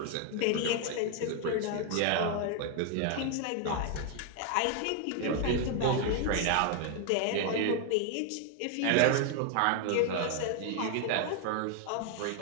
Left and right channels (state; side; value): different; both; correlation 0.00